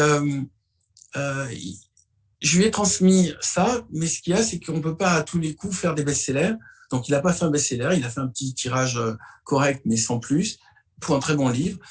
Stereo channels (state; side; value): identical; both; correlation 1.00